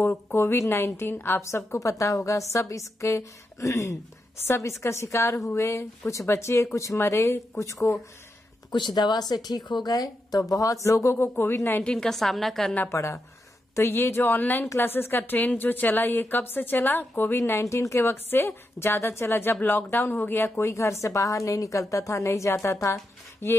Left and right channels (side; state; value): both; normal; correlation 0.86